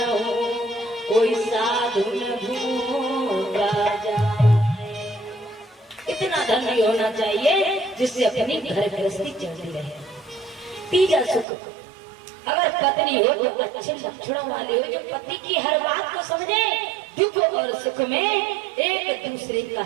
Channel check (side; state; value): left; drops out; at 11.5 s